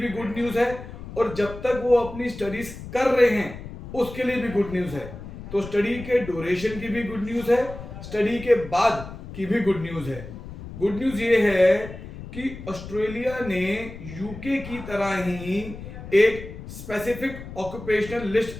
गुड न्यूज है। और जब तक वो अपनी स्टडीज कर रहे हैं उसके लिए भी गुड न्यूज है। तो स्टडी के ड्यूरेशन की भी गुड न्यूज है, स्टडी के बाद की भी गुड न्यूज है। गुड न्यूज ये है कि ऑस्ट्रेलिया ने यूके की तरह ही एक स्पेसिफिक ऑक्यूपेशनल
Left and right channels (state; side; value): noise; left; rumble, 12 dB below the sound